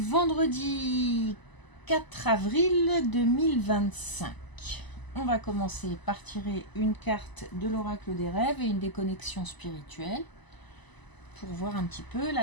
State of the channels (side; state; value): right; late; 1.0 ms